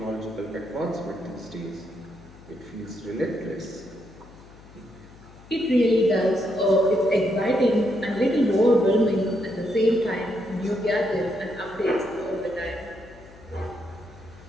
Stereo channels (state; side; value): noise; left; hum, 22 dB below the sound